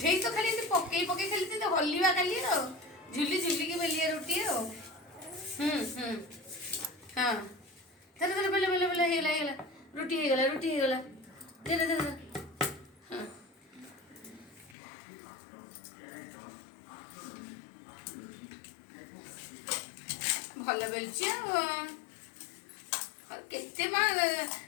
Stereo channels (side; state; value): right; drops out; at 14.8 s